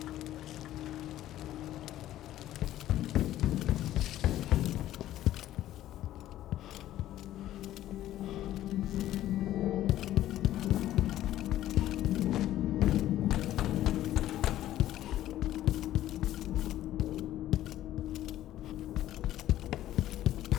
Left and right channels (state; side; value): quieter; right; 13.4 dB